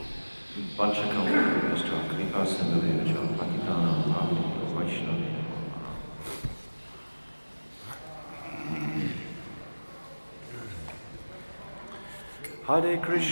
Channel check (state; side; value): inverted; both; correlation -1.00